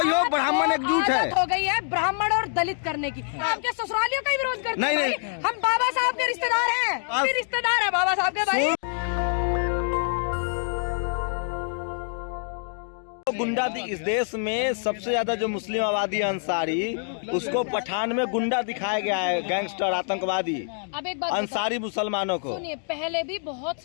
हो ब्राह्मण एकजुट है, हो गई है ब्राह्मण और दलित करने की। आपके ससुरालियों का ही विरोध करते हैं। नहीं, हम बाबा साहब के रिश्तेदार हैं, रिश्तेदार है बाबा साहब के भाई। गुंडा इस देश में सबसे ज्यादा जो मुस्लिम आबादी है अंसारी, उसको पठान में गुंडा दिखाया गया है, गैंगस्टर आतंकवादी। अब एक बात अंसारी मुसलमानों को सुनिए, पहले भी बहुत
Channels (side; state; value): right; silent; digital silence